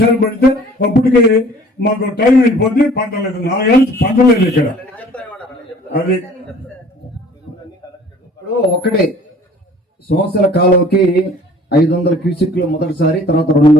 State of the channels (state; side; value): normal; both; correlation 0.51